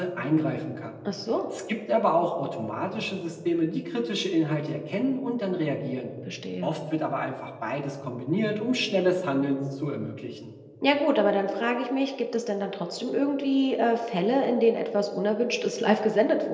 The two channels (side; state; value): both; identical; correlation 1.00